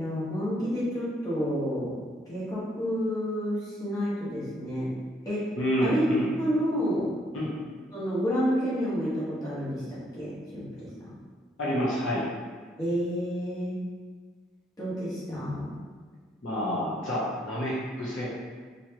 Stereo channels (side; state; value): both; normal; correlation 0.70